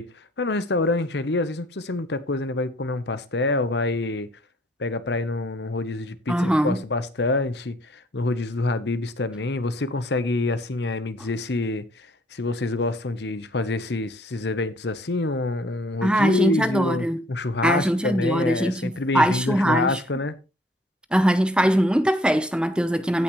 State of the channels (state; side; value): normal; both; correlation 0.62